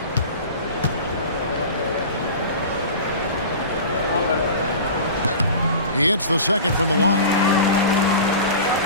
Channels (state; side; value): inverted; both; correlation -0.35